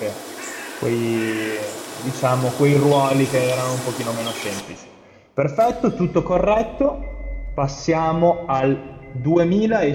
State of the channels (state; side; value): identical; both; correlation 1.00